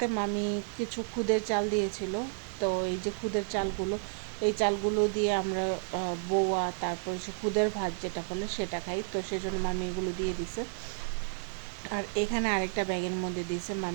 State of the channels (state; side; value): silent; left; digital silence